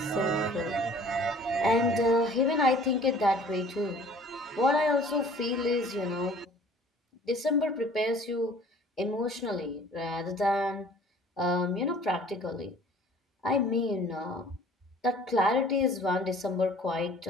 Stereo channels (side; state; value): both; normal; correlation 0.51